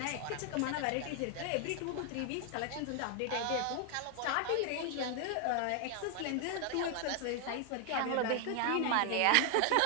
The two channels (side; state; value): both; different; correlation 0.00